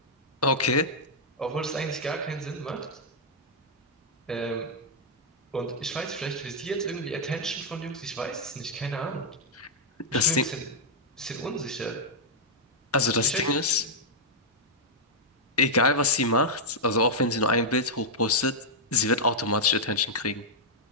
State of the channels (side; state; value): both; normal; correlation -0.05